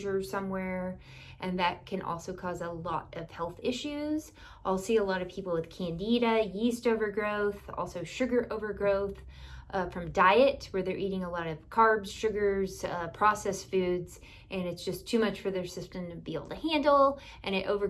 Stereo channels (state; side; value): identical; both; correlation 1.00